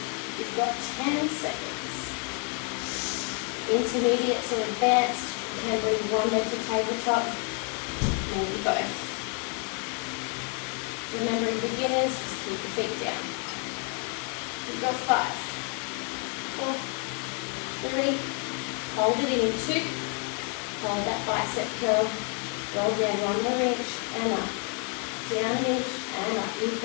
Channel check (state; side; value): quieter; right; 39.0 dB